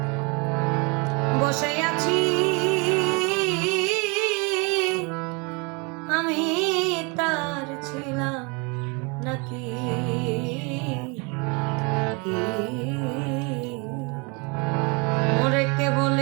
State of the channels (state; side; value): quieter; left; 30.9 dB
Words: বসে আছি আমি তার ছিলাম নাকি মোরে কে